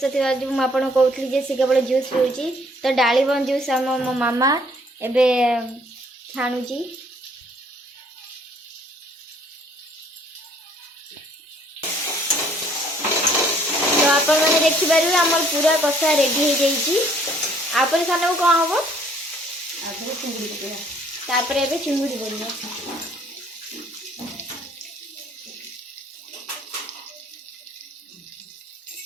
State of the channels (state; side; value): normal; both; correlation 0.61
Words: ଥିବା ଯୋଗୁଁ ମୁଁ ଆପଣଙ୍କୁ କହୁଥିଲି ଯେ ସେ କେବଳ ଜୁସ୍ ପିଉଛି। ତ ଡାଳିମ୍ବ ଜୁସ୍ ମୋ ମାମା ଏବେ ଛାଣୁଛି। ତ ଆପଣମାନେ ଦେଖିପାରିବେ ଆମର ପୁରା କଷା ରେଡ଼ି ହେଇଯାଇଛି। ଆପରେ ସାନକୁ କ'ଣ ହବ? ତାପରେ ଏବେ ଚିଙ୍ଗୁଡ଼ି ପଡ଼ିବ।